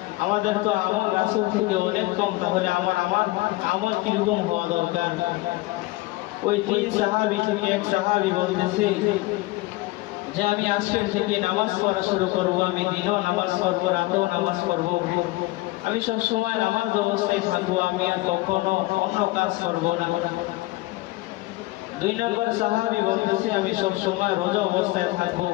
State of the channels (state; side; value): quieter; right; 20.2 dB